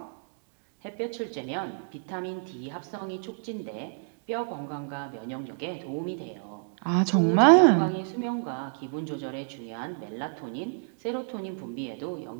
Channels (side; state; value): left; silent; 58 dB below the other